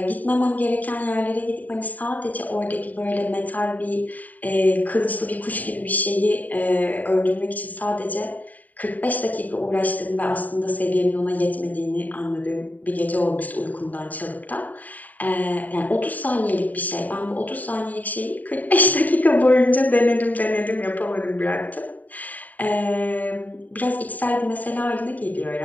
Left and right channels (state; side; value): late; right; 0.079 ms